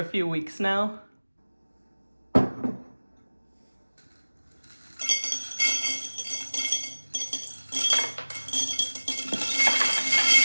few weeks now.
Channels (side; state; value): both; inverted; correlation -1.00